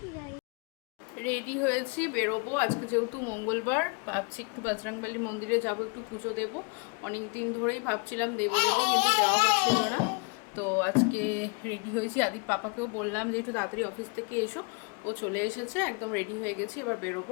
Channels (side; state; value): right; quieter; 33.2 dB